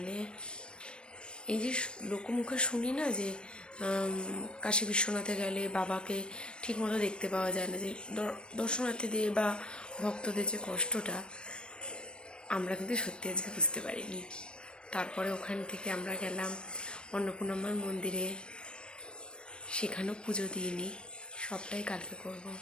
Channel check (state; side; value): late; right; 0.055 ms